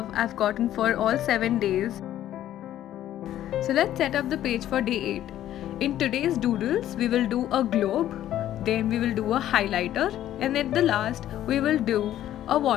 I've gotten for all 7 days. So let's set up the page for day 8. In today's doodles, we will do a globe, then we will do a highlighter, and at the last, we will do a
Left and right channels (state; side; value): quieter; right; 12.4 dB